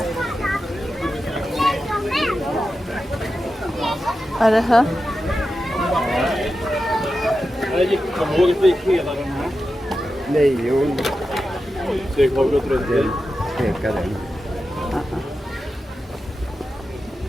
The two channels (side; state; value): both; normal; correlation 0.91